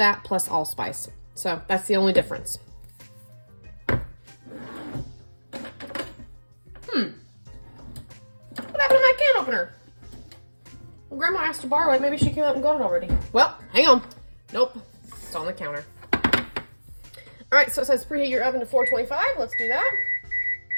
plus allspice. So that's the only difference. What happened to my can opener? Well, Grandma asked to borrow it. Maybe she came out and got it already. Well, hang on. Nope. It's on the counter. All right, so it says preheat your oven to 425. Let's do that.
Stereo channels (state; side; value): inverted; both; correlation -1.00